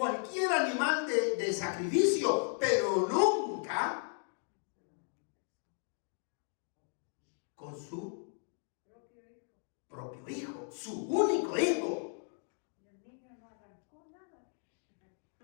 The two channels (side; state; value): right; silent; 54 dB below the other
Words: animal de sacrificio, pero nunca con su propio hijo, su único hijo.